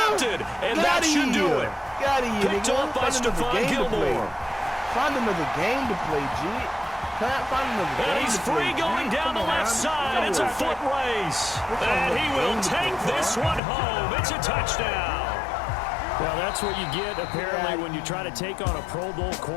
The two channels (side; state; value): right; drops out; at 13.6 s